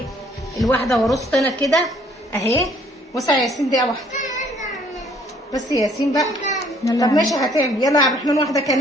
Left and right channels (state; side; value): normal; both; correlation 0.61